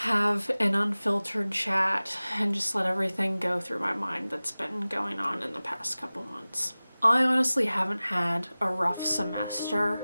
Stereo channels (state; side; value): inverted; both; correlation -0.98